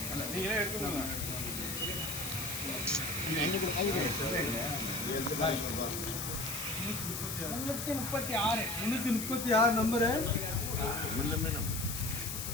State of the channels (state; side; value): noise; left; hiss, 5 dB below the sound